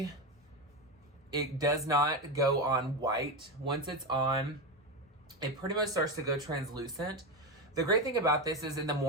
it does not go on white. Once it's on, it pretty much starts to go translucent. The great thing about this is in the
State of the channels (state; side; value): normal; both; correlation 0.15